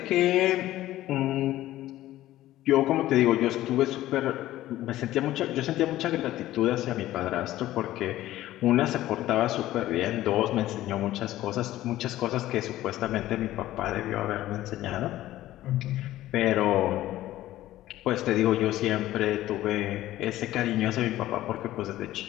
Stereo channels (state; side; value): quieter; right; 14.8 dB